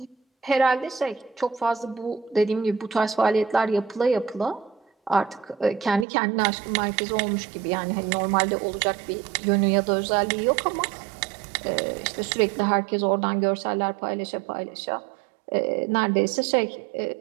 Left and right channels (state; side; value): drops out; left; at 6.1 s